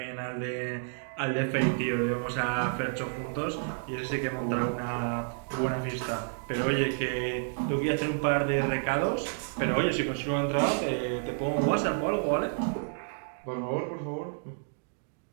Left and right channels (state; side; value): silent; left; digital silence